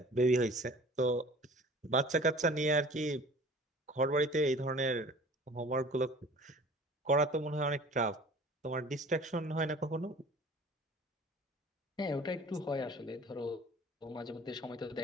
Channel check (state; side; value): normal; both; correlation 0.46